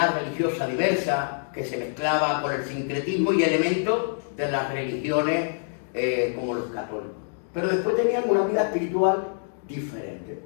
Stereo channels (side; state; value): right; silent; digital silence